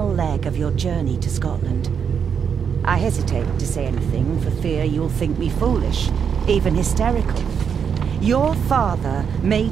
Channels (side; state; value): left; quieter; 7.0 dB